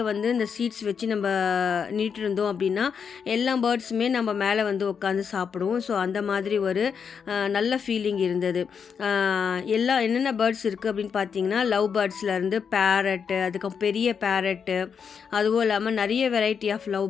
வந்து இந்த சீட்ஸ் வச்சு நம்ம நீட்டு இருந்தோம் அப்படின்னா எல்லா பேர்ட்ஸுமே நம்ம மேலே வந்து உட்காந்து சாப்பிடுவோம். ஸோ அந்த மாதிரி ஒரு நல்ல ஃபீலிங் இருந்தது. என்னென்ன பேர்ட்ஸ் இருக்குது அப்படின்னு பார்த்தீங்கன்னா லவ் பேர்ட்ஸ்லேருந்து பேரட்டு, அதுக்கப்புறம் பெரிய பேரட்டு, அதுவும் இல்லாமல் நிறைய வெரைட்டி ஆஃப் லவ்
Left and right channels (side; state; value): right; quieter; 6.6 dB